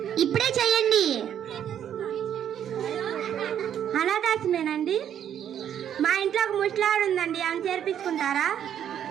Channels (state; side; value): quieter; left; 9.7 dB